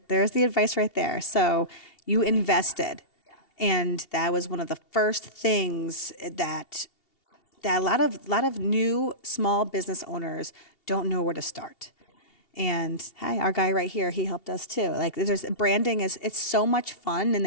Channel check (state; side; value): late; right; 2.7 ms